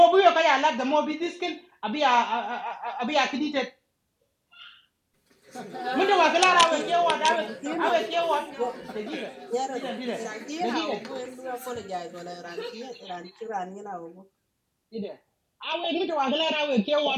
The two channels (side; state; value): both; identical; correlation 1.00